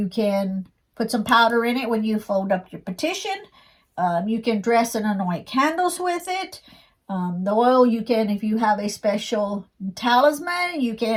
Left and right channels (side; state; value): both; identical; correlation 1.00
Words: can put some powder in it when you fold up your petition. You can dress and anoint candles with it. The oil, you can, if you have a special talisman, you